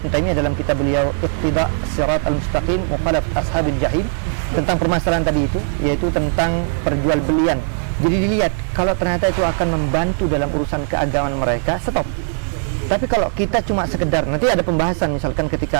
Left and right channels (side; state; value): left; silent; digital silence